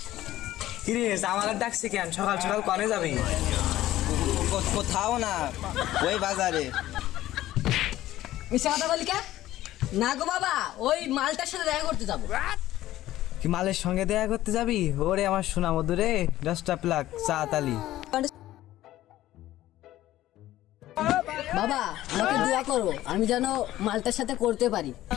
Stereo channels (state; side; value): quieter; right; 14.7 dB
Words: কি রে জামালের ডাকছি কেন? সকাল সকাল কনে যাবি? কোথাও না, ওই বাজারে। মিশা কথা বলি কে? না গো বাবা, ওই মালটার সাথে দেখা করতে যাবো। কি মালের সঙ্গে দেখা করতে যাবি? ওরে আমার সোনা মধু রে, দশটা প্লাক চা তালি। বাবা আমাকে দোয়া করো, আমি যেন মালটার সাথে করতে পারি।